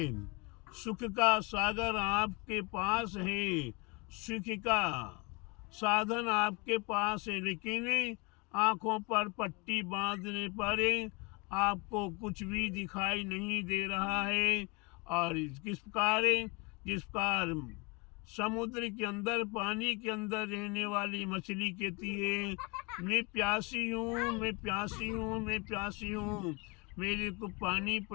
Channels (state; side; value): quieter; right; 28.7 dB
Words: सुख का सागर आपके पास है, सुख का साधन आपके पास है, लेकिन आंखों पर पट्टी बांधने पर आपको कुछ भी दिखाई नहीं दे रहा है। और किस प्रकार, जिस प्रकार समुद्र के अंदर, पानी के अंदर रहने वाली मछली कहती है मैं प्यासी हूँ, मैं प्यासी हूँ, मैं प्यासी हूँ, मेरे को पानी